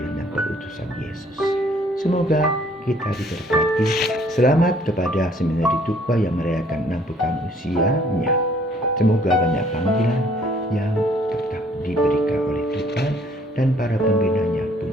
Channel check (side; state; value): both; normal; correlation 0.60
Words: dan perutusan Yesus. Semoga kita diberkati. Selamat kepada Seminari Tukwa yang merayakan 60 tahun usianya. Semoga banyak panggilan yang tetap diberikan oleh Tuhan dan para pembinanya pun